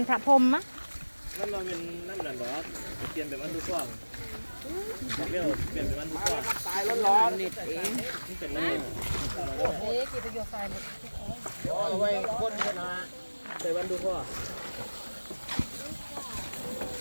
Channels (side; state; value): both; inverted; correlation -1.00